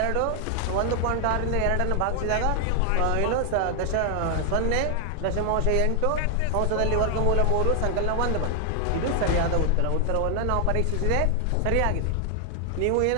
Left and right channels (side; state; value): both; different; correlation 0.00